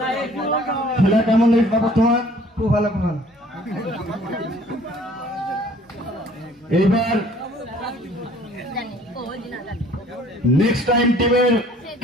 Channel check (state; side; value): normal; both; correlation 0.55